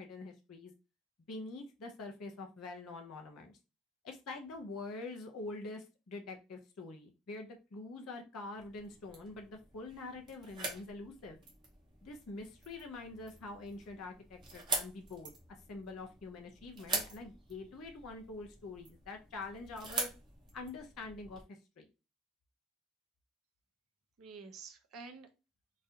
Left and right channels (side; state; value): both; normal; correlation 0.34